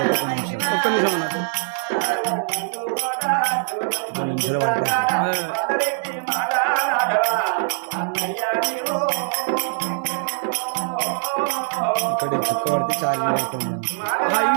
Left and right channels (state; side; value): silent; left; digital silence